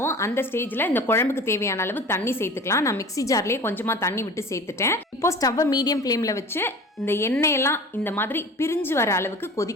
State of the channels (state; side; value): normal; both; correlation 0.39